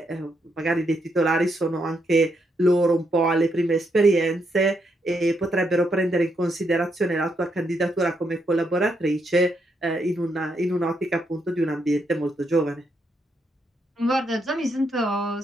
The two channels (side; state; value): both; normal; correlation 0.78